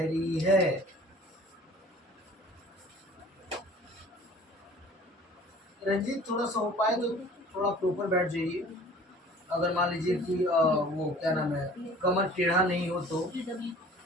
है? रंजीत, थोड़ा सा हो पाए तो थोड़ा प्रॉपर बैठ जाइए। अगर मान लीजिए कि वो क्या नाम है, कमर टेढ़ा नहीं हो तो,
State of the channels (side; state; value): both; normal; correlation 0.48